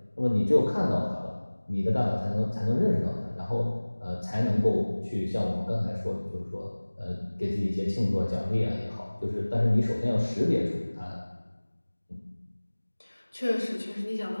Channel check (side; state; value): both; inverted; correlation -1.00